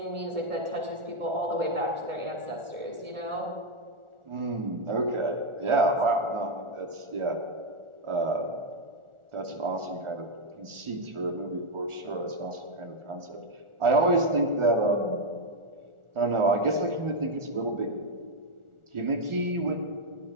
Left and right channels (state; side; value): late; left; 1.4 ms